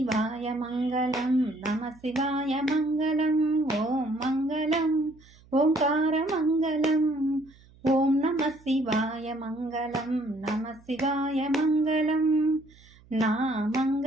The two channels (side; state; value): right; noise; hum, 27 dB below the sound